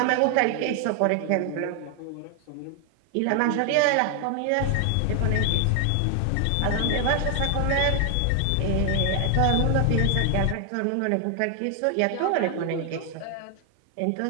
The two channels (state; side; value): different; both; correlation 0.00